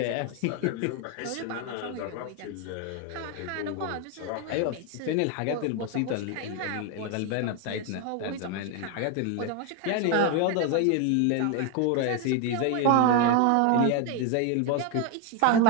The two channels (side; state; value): both; different; correlation 0.01